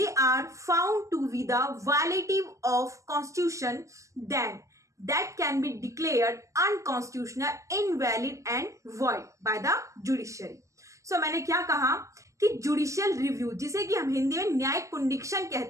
are found to be the violative of constitution, then that can be declared unconstitutional, invalid and void by the judiciary. So मैंने क्या कहा कि judicial review, जिसे कि हम हिंदी में न्यायिक पुनरीक्षण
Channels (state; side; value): late; left; 0.15 ms